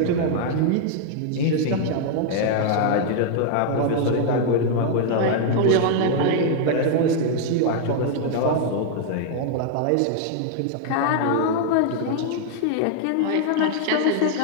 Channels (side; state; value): both; different; correlation 0.00